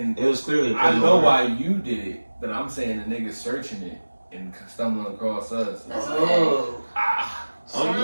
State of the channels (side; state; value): both; inverted; correlation -1.00